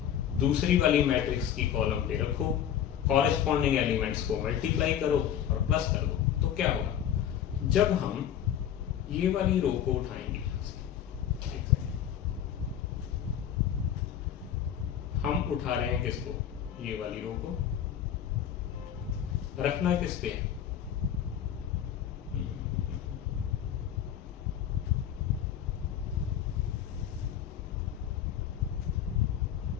दूसरी वाली मैट्रिक्स की कॉलम पे रखो, कॉरेस्पॉन्डिंग एलिमेंट्स को मल्टीप्लाई करो और प्लस कर दो। तो क्या होगा, जब हम ये वाली रो को उठाएंगे, हम उठा रहे हैं किसको, ये वाली रो को, रखना किस पे है,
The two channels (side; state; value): right; quieter; 9.8 dB